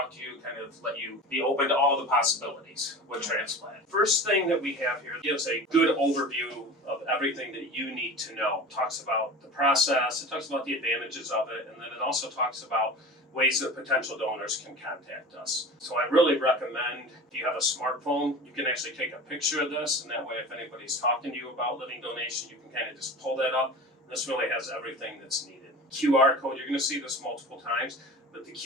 to you, kind of let you be open to all the possibilities with transplant. First thing that we have here gives a good overview of everything that you need to know. It talks about the process, it talks about the advantages of it, and then it also talks about ways that potential donors can contact us. So I really recommend, if you have a smartphone, you can actually take a picture of this, and that way if anybody's talking to you about living donation, you can kind of just pull that up. This really has everything that's needed. QR code, you're going to see this multiple times. But the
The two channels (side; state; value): both; normal; correlation 0.35